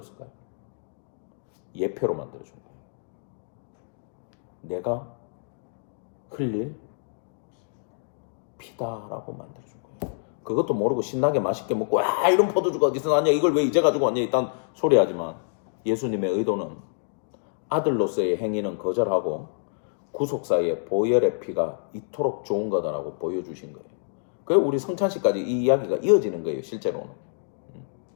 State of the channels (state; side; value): silent; right; digital silence